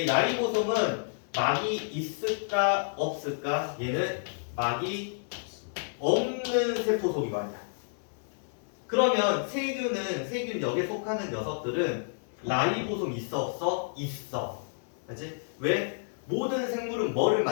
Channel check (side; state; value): right; silent; 58 dB below the other